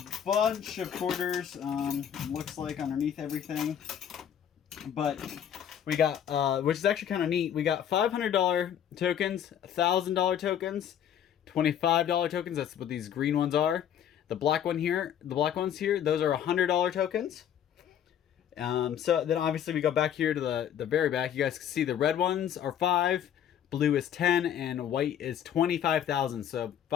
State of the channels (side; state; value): right; quieter; 9.5 dB